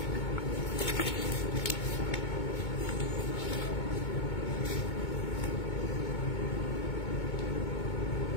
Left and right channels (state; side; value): late; right; 2.2 ms